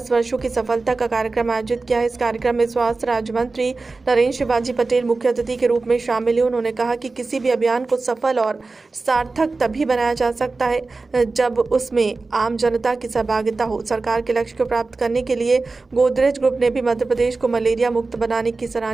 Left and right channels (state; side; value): quieter; left; 3.7 dB